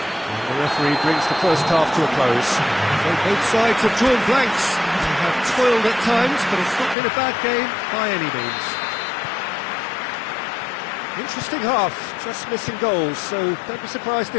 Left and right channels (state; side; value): drops out; right; at 7.0 s